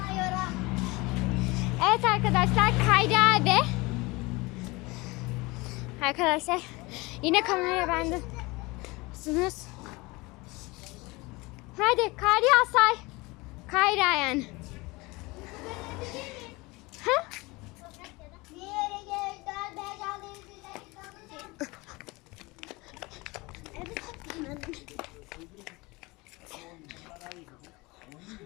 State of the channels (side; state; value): right; quieter; 23.7 dB